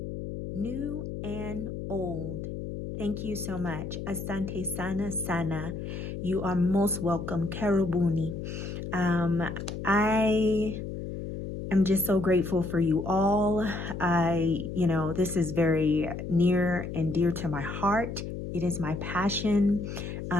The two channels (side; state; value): left; noise; hum, 6 dB below the sound